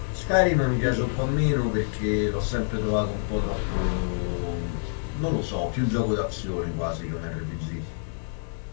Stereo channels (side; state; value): right; silent; 60 dB below the other